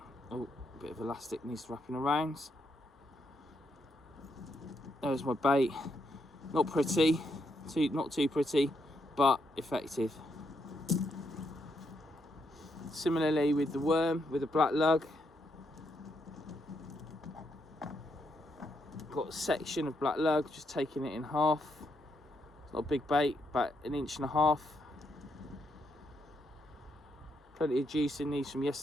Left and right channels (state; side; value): normal; both; correlation 0.78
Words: oh, a bit of elastic needs wrapping around. There's my bait. Not pretty, not too pretty, but effective. Similarly with the worm, with the black lug. Got a section of black lug, just taking it in half. It's not a big bait, about 1.5 inches. Plenty of juice in these from